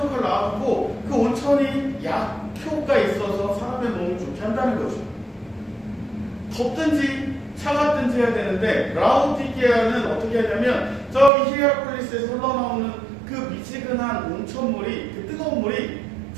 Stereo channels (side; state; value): left; drops out; at 11.3 s